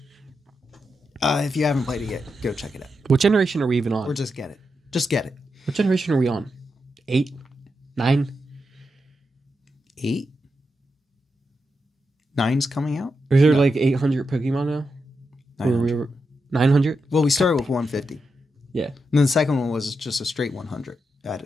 If you haven't played it yet, go check it out. What generation are we even on? Or just get it. Just get it. What generation are we on? 8? 9? 8? 9's coming out? Is there like 800 Pokemon now? 900. 900? Well, we started with 150. Yeah. And then the second one was just a straight 100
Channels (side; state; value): both; normal; correlation 0.86